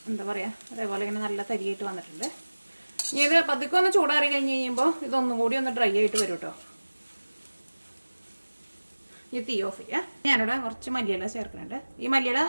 എന്താ പറയുക, അതേപോലെ ഇങ്ങനെ നല്ല തരിയായിട്ട് വന്നിട്ടുണ്ട്. ഇനി ഇത് പതുക്കെ ഒന്ന് ചൂടാറി കഴിഞ്ഞ് കഴിയുമ്പോൾ ഇതൊന്നും കൂടി ഒന്ന് ഡ്രൈ ആയിട്ട് വരും കേട്ടോ. ഈ തീ ഓഫ് ചെയ്യുക. ഞാനിവിടെ കുറച്ച് മല്ലിയില ചേർക്കുന്നുണ്ട്. ഈ മല്ലിയില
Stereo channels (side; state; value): both; inverted; correlation -1.00